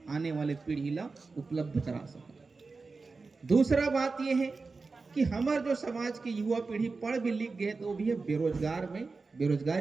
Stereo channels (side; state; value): left; quieter; 4.1 dB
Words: आने वाले पीढ़ी ला उपलब्ध करा सके। दूसरा बात यह है कि हमारे जो समाज के युवा पीढ़ी पढ़ भी लिख गए तो भी है बेरोजगार में